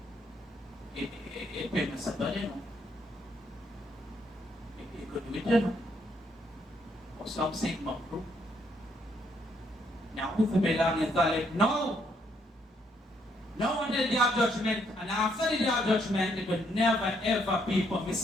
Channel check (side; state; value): both; normal; correlation 0.72